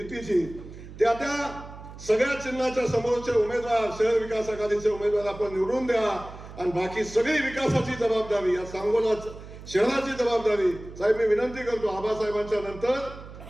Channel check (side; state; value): right; noise; hum, 15 dB below the sound